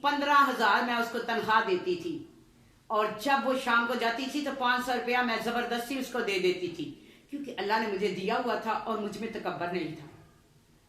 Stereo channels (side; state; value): both; identical; correlation 1.00